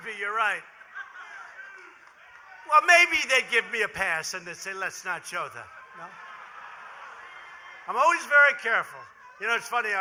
be, you're right. Well, maybe they'd give me a pass and they'd say, let's not show that. No? I'm always very careful. You know, it's funny,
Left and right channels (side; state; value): both; identical; correlation 1.00